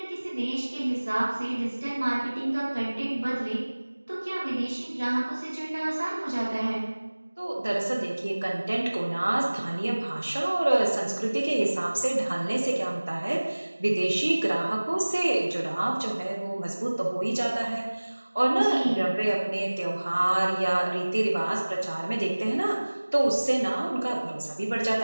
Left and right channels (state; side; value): inverted; both; correlation -1.00